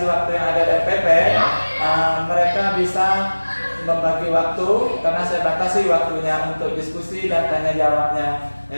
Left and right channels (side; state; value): both; inverted; correlation -1.00